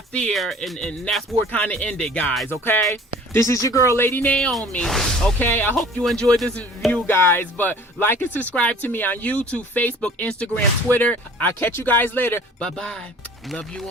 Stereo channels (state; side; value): normal; both; correlation 0.48